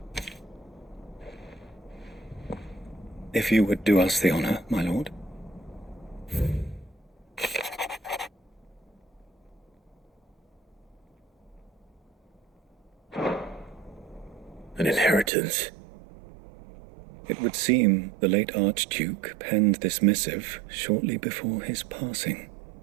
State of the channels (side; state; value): left; drops out; at 15.3 s